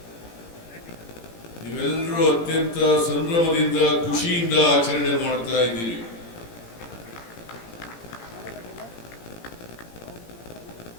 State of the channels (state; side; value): late; right; 17 ms